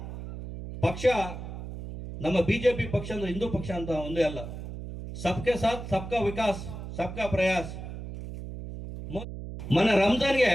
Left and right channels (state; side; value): noise; right; hum, 9 dB below the sound